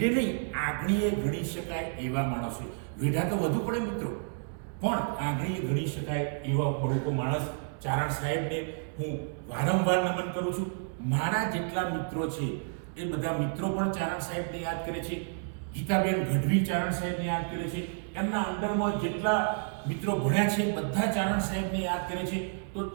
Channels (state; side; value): silent; left; digital silence